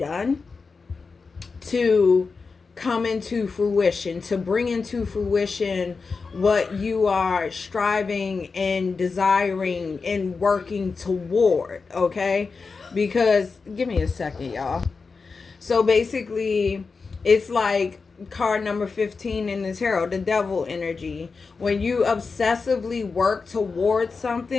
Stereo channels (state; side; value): quieter; right; 4.6 dB